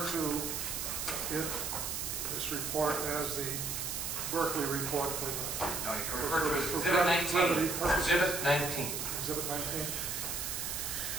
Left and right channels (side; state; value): right; noise; hiss, 3 dB below the sound